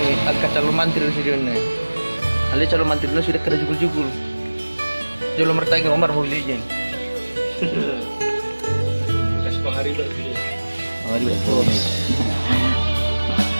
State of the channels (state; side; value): inverted; both; correlation -1.00